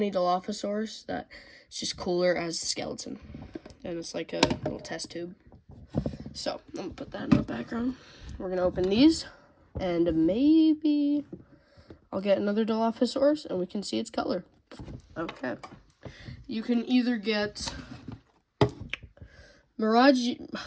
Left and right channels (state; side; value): identical; both; correlation 1.00